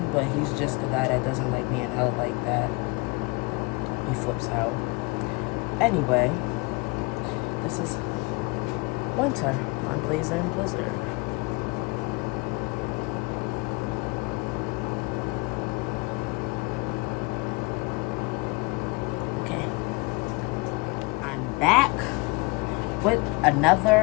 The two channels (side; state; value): right; quieter; 27.3 dB